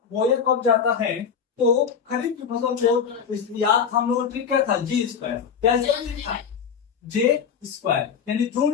बोया कब जाता है, तो खरीफ की फसल को याद हम लोग ट्रिक क्या था, जी स्क्वायर। क्या था, जे स्क्वायर, यानी जून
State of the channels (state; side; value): quieter; right; 6.9 dB